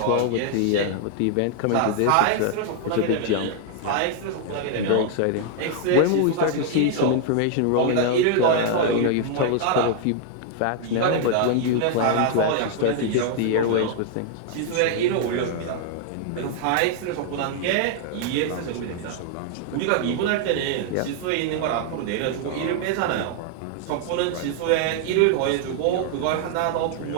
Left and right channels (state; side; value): different; both; correlation 0.00